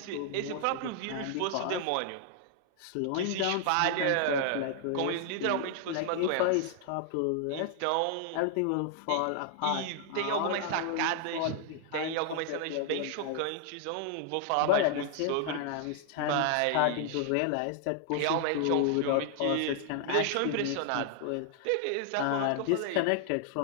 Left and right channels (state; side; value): different; both; correlation 0.00